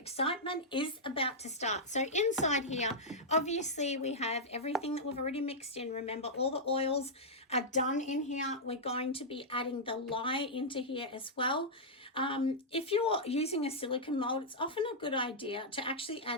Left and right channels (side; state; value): both; normal; correlation -0.08